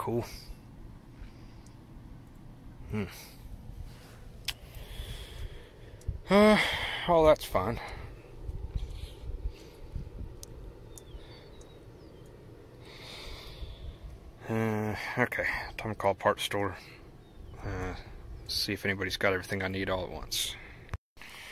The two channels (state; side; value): identical; both; correlation 1.00